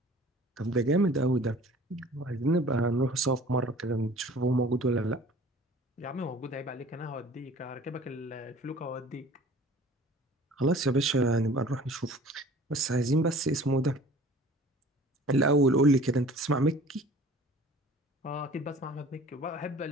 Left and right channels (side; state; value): both; normal; correlation 0.47